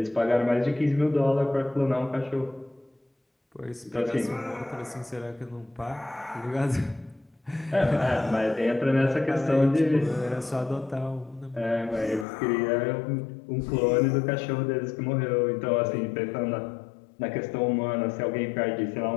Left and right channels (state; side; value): drops out; right; at 12.2 s